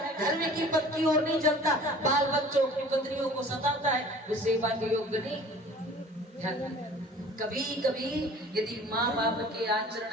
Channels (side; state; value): both; normal; correlation 0.46